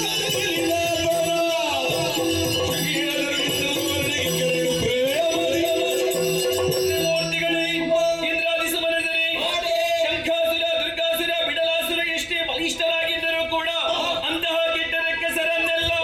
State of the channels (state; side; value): identical; both; correlation 1.00